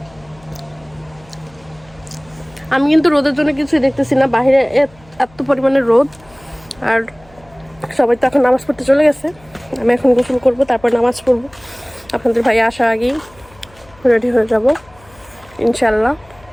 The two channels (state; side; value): noise; left; hum, 27 dB below the sound